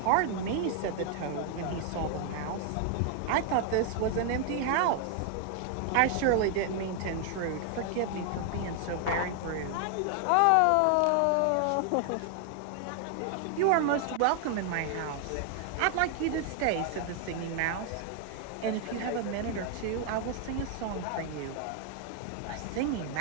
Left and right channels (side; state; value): both; different; correlation 0.00